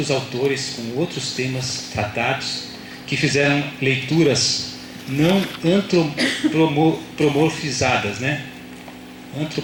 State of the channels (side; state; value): both; identical; correlation 1.00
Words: autores com outros temas tratados que fizeram leituras não antropomorfizadas, né?